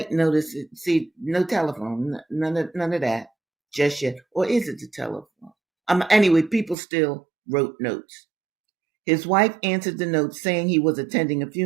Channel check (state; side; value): drops out; left; at 6.8 s